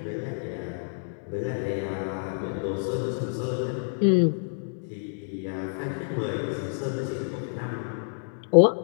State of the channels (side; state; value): right; silent; digital silence